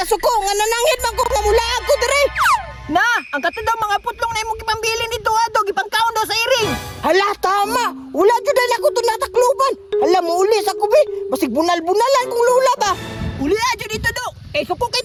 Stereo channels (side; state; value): both; identical; correlation 1.00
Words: suko. Nga nanangit man ko mamula ako, dre. Na, ang katadaw mga putlong na imong ipambili nito adog ipangkaon daw sa iring. Hala, tama. Wala jud na ako to natakluban. Hala mo uli sa kubi. Basig bunal-bunalan kung lula ba. Uli aja dito do. Eh suko kay